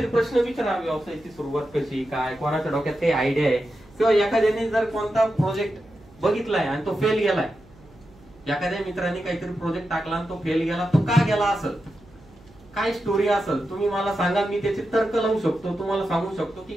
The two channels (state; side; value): noise; right; hum, 26 dB below the sound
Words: प्रश्न विचारा, व्यवसायाची सुरुवात कशी, काय, कोणाच्या डोक्यात काही आयडिया आहे, किंवा एखाद्याने जर कोणता प्रोजेक्ट बघितलाय आणि तो फेल गेलाय, एखाद्या मित्राने काहीतरी प्रोजेक्ट टाकला आणि तो फेल गेला, तो का गेला असेल, काय स्टोरी असेल, तुम्ही मला सांगा. मी त्याचे तर्क लावू शकतो, तुम्हाला सांगू शकतो की